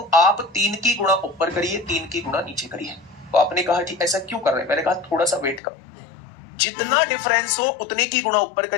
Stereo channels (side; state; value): right; drops out; at 5.6 s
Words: आप 3 की गुणा ऊपर करिए, 3 की गुणा नीचे करिए। तो आपने कहा जी ऐसा क्यों कर रहे हैं, मैंने कहा थोड़ा सा वेट करो। जितना डिफरेंस हो उतने की गुणा ऊपर